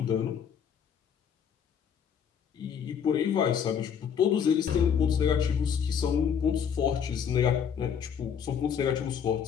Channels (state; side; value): quieter; right; 7.6 dB